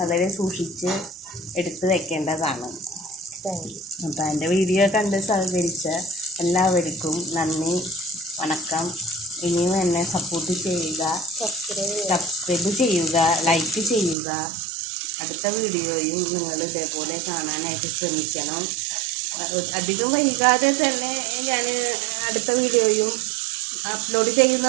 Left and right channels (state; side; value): drops out; left; at 14.2 s